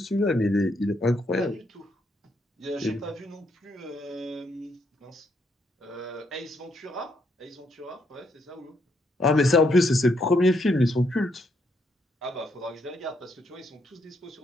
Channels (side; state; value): both; normal; correlation 0.75